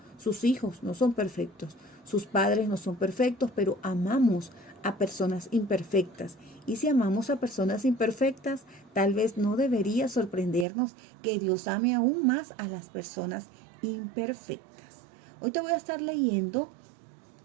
sus hijos no son perfectos, sus padres no son perfectos, pero amamos a personas imperfectas. Y si amamos a personas imperfectas, tal vez no debería sorprendernos que Dios ame aún más a las personas imperfectas. Hoy te voy a estar leyendo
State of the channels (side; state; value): left; drops out; at 10.7 s